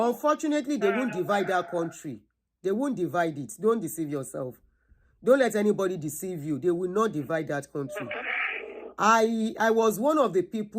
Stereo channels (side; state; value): both; identical; correlation 1.00